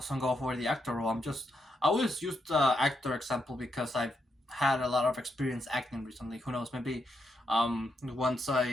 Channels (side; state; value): both; normal; correlation 0.81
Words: go for the actor role. I always use the actor example because I've had a lot of experience acting recently. Who knows? Maybe once